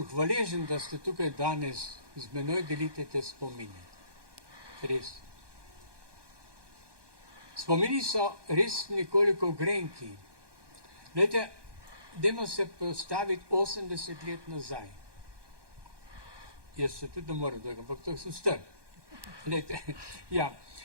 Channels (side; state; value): left; late; 1.2 ms